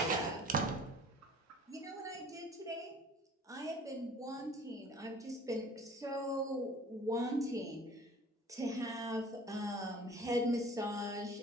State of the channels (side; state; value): both; normal; correlation 0.48